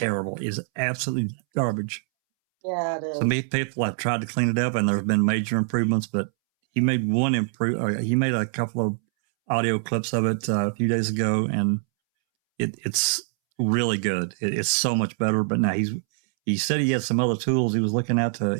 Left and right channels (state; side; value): silent; left; 62 dB below the other